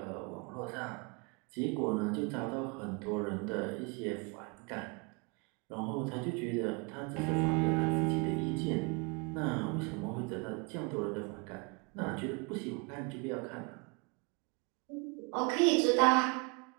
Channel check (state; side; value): quieter; left; 31.0 dB